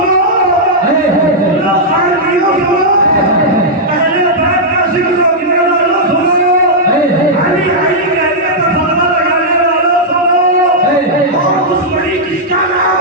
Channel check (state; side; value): normal; both; correlation -0.07